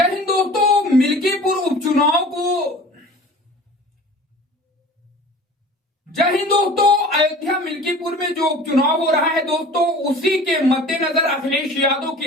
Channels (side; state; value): both; normal; correlation 0.43